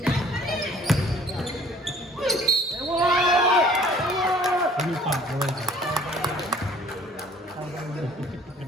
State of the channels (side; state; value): both; normal; correlation 0.53